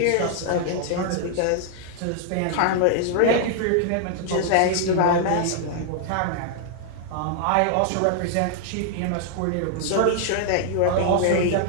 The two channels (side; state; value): both; different; correlation 0.00